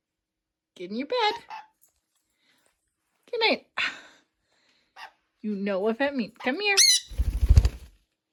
Get in your bed. Good night. You know what that means. Come here.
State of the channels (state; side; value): identical; both; correlation 1.00